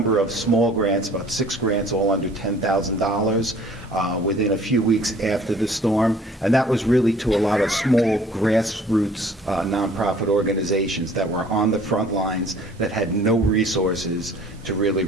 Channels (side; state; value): both; normal; correlation 0.53